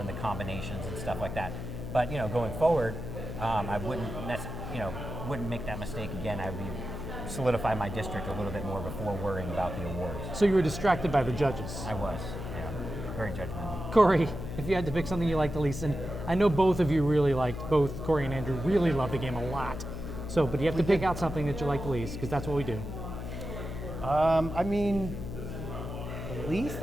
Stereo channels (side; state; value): left; noise; hum, 7 dB below the sound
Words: the combinations and stuff like that. But going forward, I wouldn't make that mistake again. I would solidify my district a little bit more before worrying about the awards. So you were distracted by the judges. I was, yeah, very judgmental. Corey, if you had to pick something you liked the least, and I know both of you really liked, both Corey and Andrew really loved the game a lot. So, but you have to pick out something that you like the least, because that's what we do. I mean, the least.